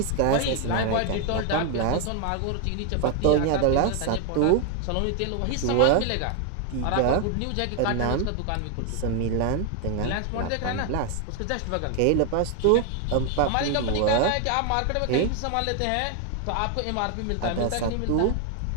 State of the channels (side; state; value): both; different; correlation 0.01